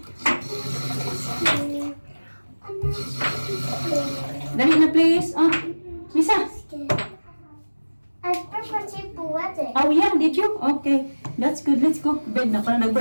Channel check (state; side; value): inverted; both; correlation -1.00